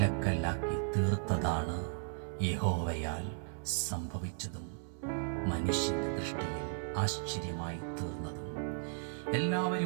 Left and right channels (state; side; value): silent; left; 54 dB below the other